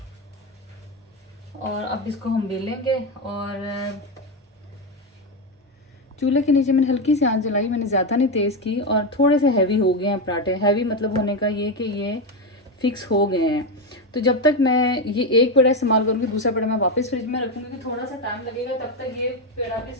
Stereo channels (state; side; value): normal; both; correlation 0.10